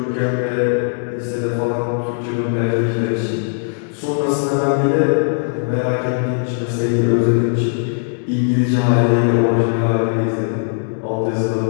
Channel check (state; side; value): silent; right; digital silence